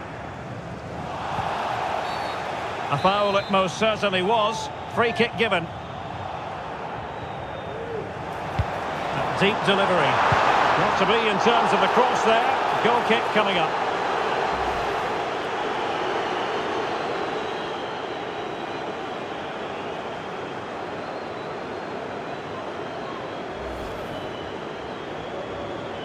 A foul it most certainly was. Free kick given. A deep delivery. Not to be in terms of the cross there. Goal kick coming up.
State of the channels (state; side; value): identical; both; correlation 1.00